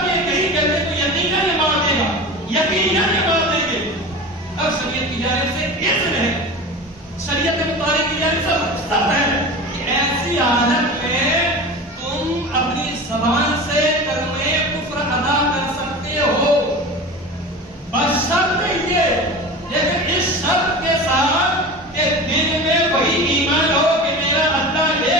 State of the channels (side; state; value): both; normal; correlation 0.32